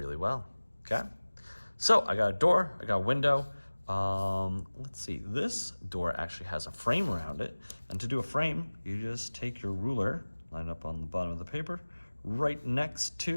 well, okay? So I got a door, I got a window. Let's see, this door actually has a frame around it, and to do a frame, you just take your ruler, line up on the bottom of the paper, right next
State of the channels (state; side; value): inverted; both; correlation -1.00